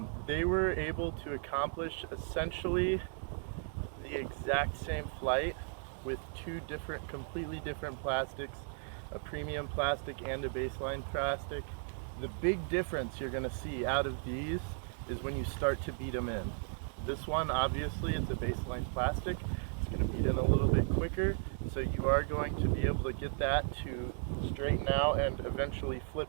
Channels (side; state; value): left; silent; 54 dB below the other